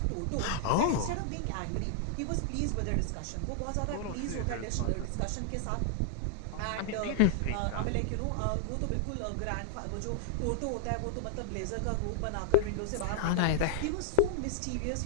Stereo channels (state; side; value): different; both; correlation 0.00